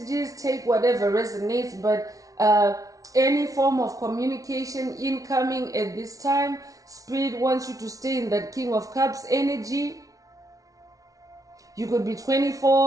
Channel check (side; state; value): left; late; 0.17 ms